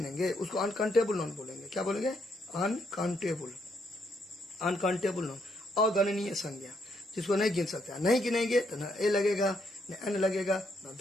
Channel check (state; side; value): normal; both; correlation 0.75